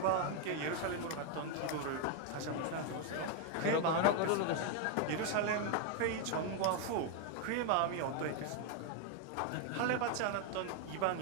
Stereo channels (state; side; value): different; both; correlation 0.01